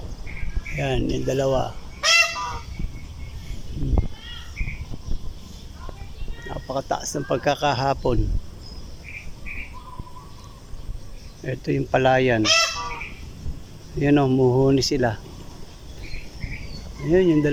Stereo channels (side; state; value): both; identical; correlation 1.00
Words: Ayan, yung dalawa. Napakataas ng pagkakahapon. Ito yung palayan. Ayan o, muhuni sila. Ayan, yung